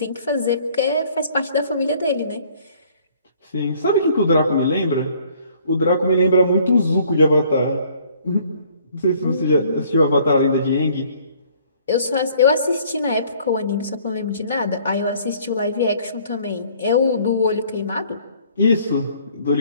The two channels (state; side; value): inverted; both; correlation -0.58